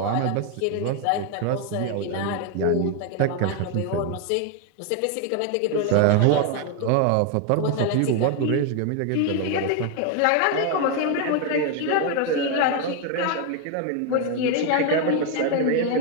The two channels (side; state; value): both; different; correlation 0.01